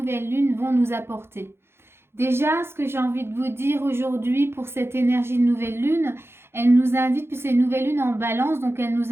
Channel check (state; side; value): late; left; 0.12 ms